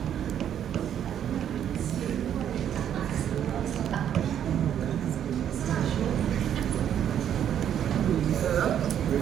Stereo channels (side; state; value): left; quieter; 9.7 dB